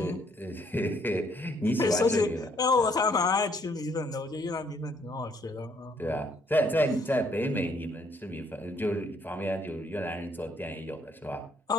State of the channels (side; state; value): both; normal; correlation 0.67